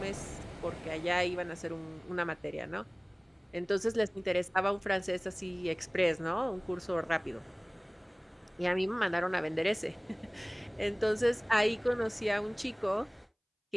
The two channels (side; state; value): both; identical; correlation 1.00